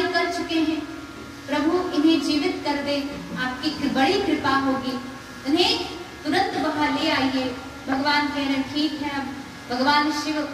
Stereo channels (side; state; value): both; identical; correlation 1.00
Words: कर चुके हैं, प्रभु इन्हें जीवित कर दे, आपकी बड़ी कृपा होगी, इन्हें तुरंत वहां ले आइए। भगवान कह रहे ठीक है। अब भगवान शिव